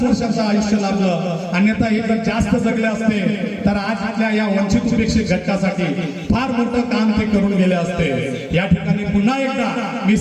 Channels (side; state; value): both; identical; correlation 1.00